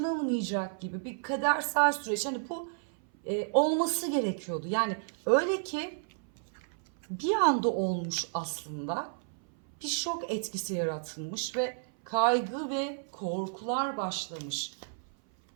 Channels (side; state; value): left; silent; 57 dB below the other